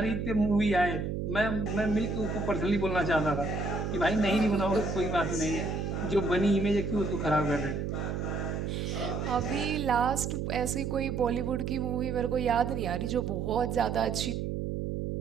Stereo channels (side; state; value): right; noise; hum, 2 dB below the sound